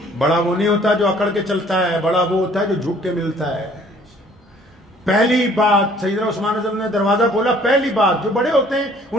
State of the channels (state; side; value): normal; both; correlation 0.57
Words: बड़ा वो नहीं होता जो अकड़ के चलता है, बड़ा वो होता है जो झुक के मिलता है। पहली बात सैयदना उस्मान रज़ी ने दरवाजा खोला, पहली बात, जो बड़े होते हैं